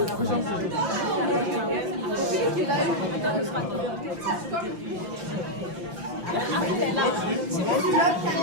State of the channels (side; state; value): left; late; 5.8 ms